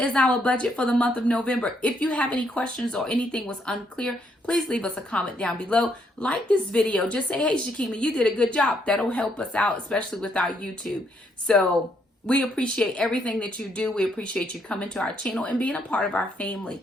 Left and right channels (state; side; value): normal; both; correlation 0.73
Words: is our budget for the month of November. If you have any questions or anything was unclear, please leave us a comment down below. Like this video. Just say, hey, Shakima, you did a good job. That'll help us out, especially with our YouTube. So we appreciate everything that you do. We appreciate you coming to our channel and being a part of our family.